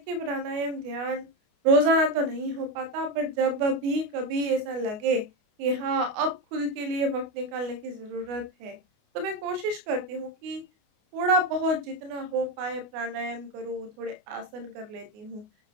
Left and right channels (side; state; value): left; late; 28 ms